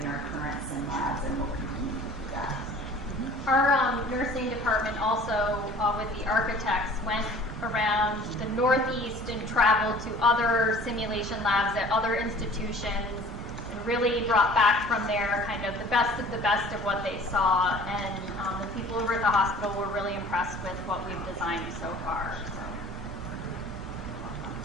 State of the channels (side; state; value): both; normal; correlation 0.48